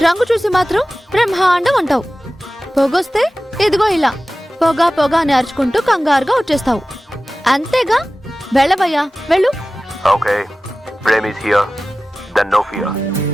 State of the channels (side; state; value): both; normal; correlation 0.96